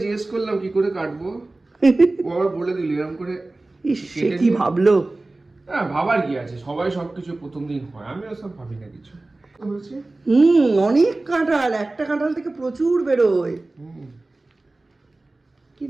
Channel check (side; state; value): left; quieter; 3.0 dB